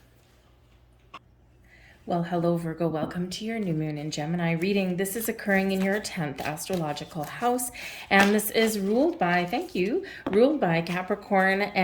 Well, hello, Virgo. Welcome to your new moon in Gemini reading. This is occurring in your 10th astrological house, and this is ruled by, ruled by Capricorn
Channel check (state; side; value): identical; both; correlation 1.00